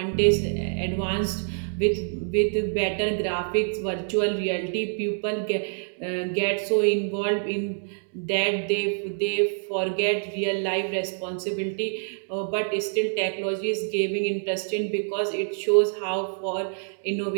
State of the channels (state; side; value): silent; left; digital silence